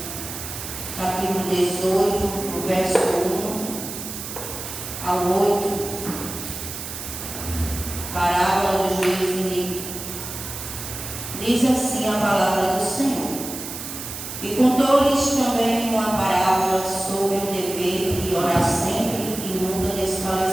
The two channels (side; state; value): right; noise; hiss, 8 dB below the sound